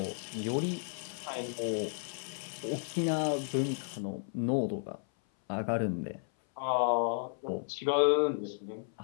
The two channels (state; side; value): silent; right; 56 dB below the other